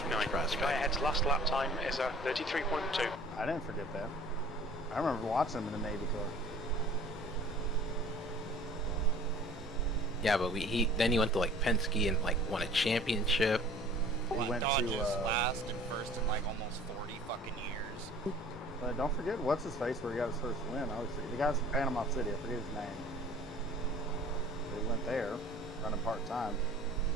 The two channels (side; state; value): both; normal; correlation 0.48